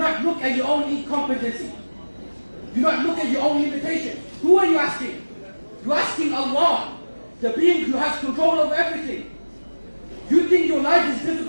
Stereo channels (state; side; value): inverted; both; correlation -1.00